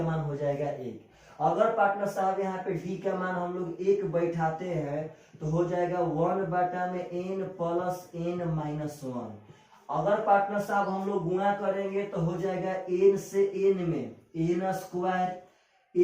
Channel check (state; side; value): identical; both; correlation 1.00